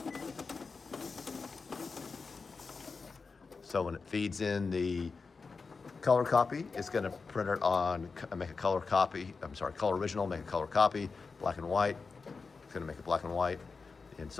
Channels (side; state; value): right; quieter; 4.6 dB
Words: So when it feeds in the color copy, it's going to print it on, make a color copy, color original, make a color copy, black and white, it's going to make a black and white, and